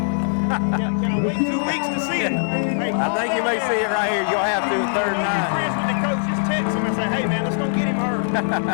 Can I wait 2 weeks to see it? Hey, call I think you may see it right here. You'll have to. I know you friends with the coach. Just text him and say, hey, man, let's don't get him hurt.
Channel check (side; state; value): right; silent; digital silence